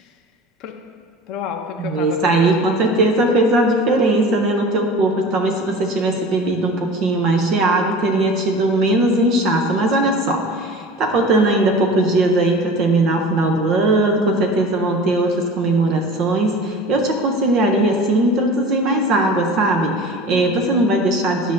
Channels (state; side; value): normal; both; correlation 0.39